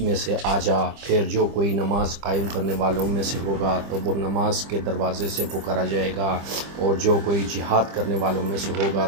سے آ جا۔ پھر جو کوئی نماز قائم کرنے والوں میں سے ہوگا تو وہ نماز کے دروازے سے پکارا جائے گا، اور جو کوئی جہاد کرنے والوں میں سے ہوگا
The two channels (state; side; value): late; left; 25 ms